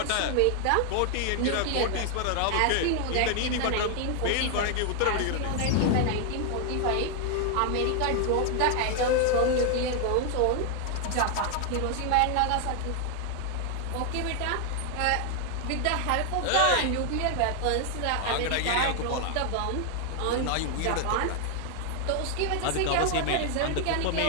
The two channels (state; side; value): different; both; correlation 0.00